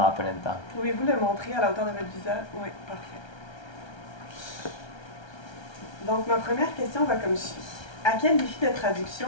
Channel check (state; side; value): late; right; 1.3 ms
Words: la polenta. Pouvez-vous le montrer à la hauteur de votre visage? Oui, parfait. Donc, ma première question va comme suit. À quel défi de